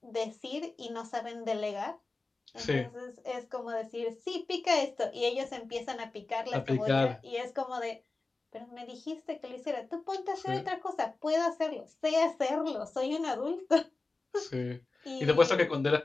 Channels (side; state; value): right; quieter; 3.5 dB